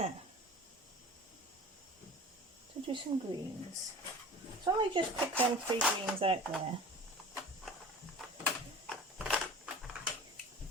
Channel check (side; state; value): both; normal; correlation 0.39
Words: So do some greens. So I just pick them 3 greens out there.